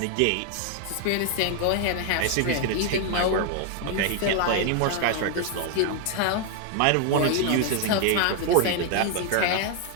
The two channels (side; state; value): both; different; correlation 0.00